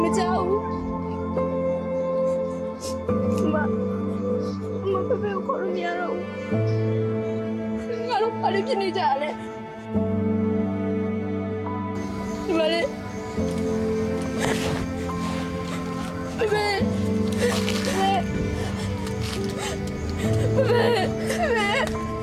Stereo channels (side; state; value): both; identical; correlation 1.00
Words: မကြောက်ဘူးမဖေဖေကိုခေါ်လို့မရတော့ဘူးငါတို့ဘာလို့ဖြစ်နေကြလဲဒီမလေးဖေဖေ